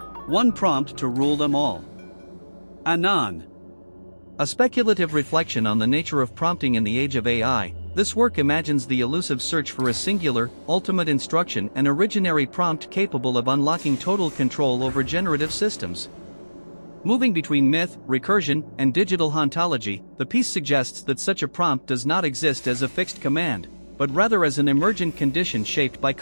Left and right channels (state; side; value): inverted; both; correlation -1.00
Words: One prompt to rule them all. Anon. A speculative reflection on the nature of prompting in the age of AI, this work imagines the elusive search for a singular, ultimate instruction and originary prompt capable of unlocking total control over generative systems. Moving between myth, recursion, and digital hauntology, the piece suggests that such a prompt does not exist as a fixed command, but rather as an emergent condition shaped by